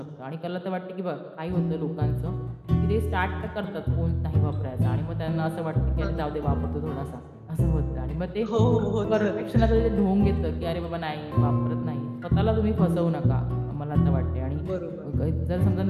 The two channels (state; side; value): identical; both; correlation 1.00